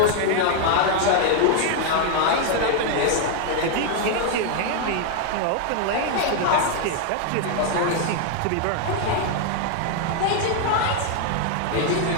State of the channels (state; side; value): different; both; correlation 0.00